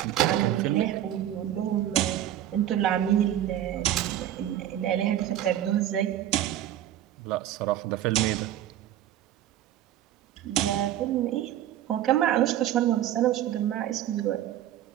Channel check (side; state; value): left; quieter; 12.1 dB